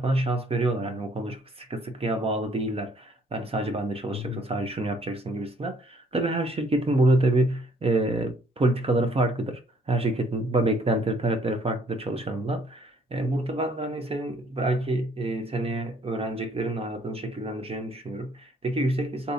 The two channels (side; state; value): both; normal; correlation 0.63